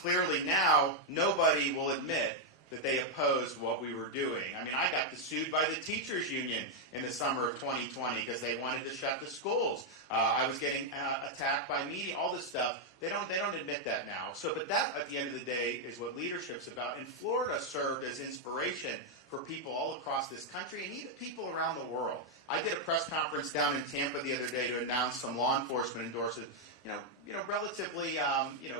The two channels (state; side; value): normal; both; correlation -0.01